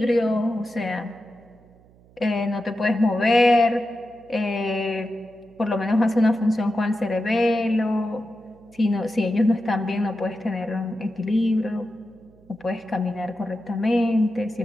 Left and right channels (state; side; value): noise; right; hum, 28 dB below the sound